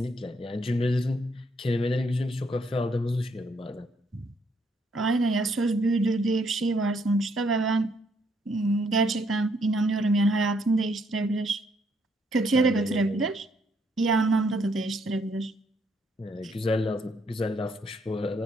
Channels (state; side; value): normal; both; correlation 0.71